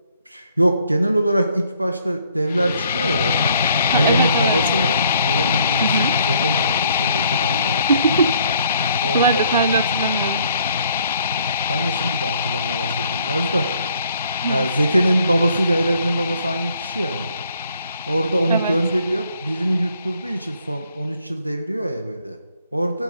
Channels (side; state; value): both; inverted; correlation -0.64